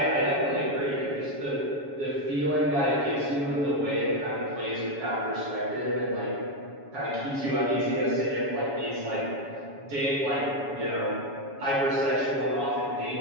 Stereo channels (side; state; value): left; late; 7.1 ms